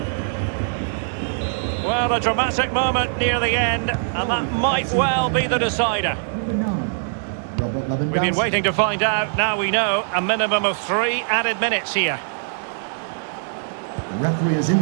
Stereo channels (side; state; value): left; silent; digital silence